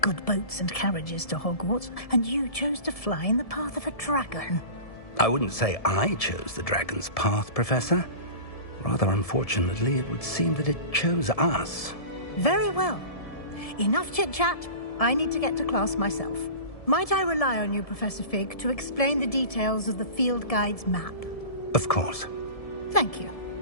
good boats and carriages to Hogwarts, and you chose to fly in the path of a dragon. I wouldn't say I chose the dragon's path, Professor. Rather unfortunately, it would seem that it chose us. Very well. Enough chit-chat. I need to get to class myself. Might I rely on you, Professor Fig, to explain the details of the field guide's map? Of course. Thank you.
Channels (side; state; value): right; late; 1.7 ms